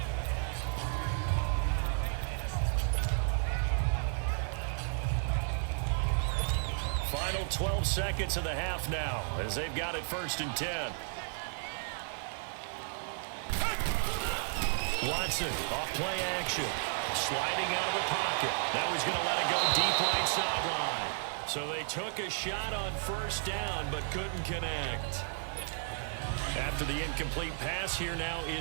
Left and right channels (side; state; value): left; silent; digital silence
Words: Final 12 seconds of the half now, as they've got it 1st and 10. Watson, off play action, sliding out of the pocket. Now he's going to let it go deep right sideline. So they took a shot on 1st down, but couldn't connect. After the incomplete pass, here now